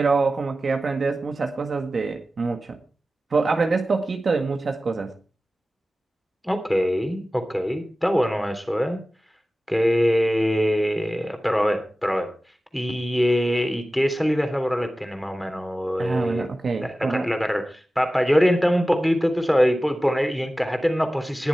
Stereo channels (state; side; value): normal; both; correlation 0.95